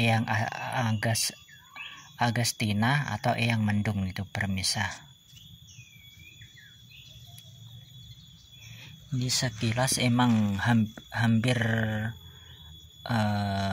Agustina atau Eyang Mendung itu pemirsa. Ini sekilas emang hampir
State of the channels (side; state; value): both; identical; correlation 1.00